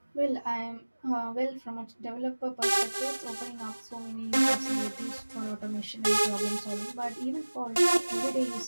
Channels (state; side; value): inverted; both; correlation -1.00